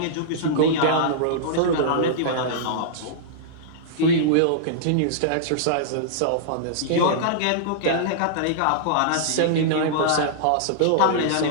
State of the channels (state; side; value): different; both; correlation -0.02